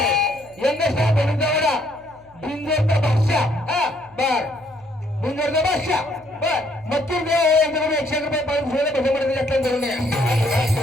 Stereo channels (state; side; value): noise; left; hum, 29 dB below the sound